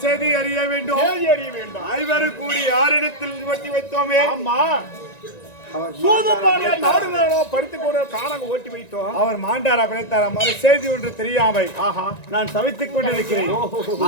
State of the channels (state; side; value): late; right; 1.9 ms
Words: செய்தி அறிய வேண்டும் ஐவரும் கூடி யாரிடத்தில் வட்டி வைத்தோமே ஓட்டி வைத்தோம் அவர் மாண்டாரா பிழைத்தாரா மறு செய்தி ஒன்று தெரியாமை நான் தவித்துக் கொண்டிருக்கிறேன்